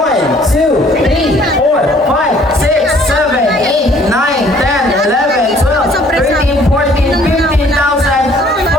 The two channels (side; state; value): both; normal; correlation 0.59